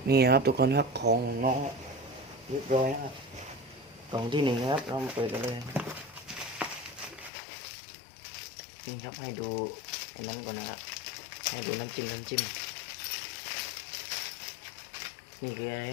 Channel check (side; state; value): right; drops out; at 7.3 s